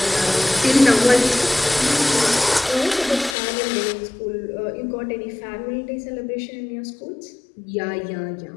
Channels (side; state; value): right; drops out; at 3.4 s